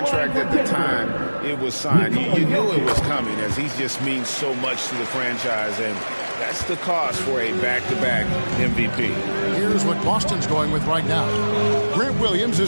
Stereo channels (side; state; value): both; inverted; correlation -1.00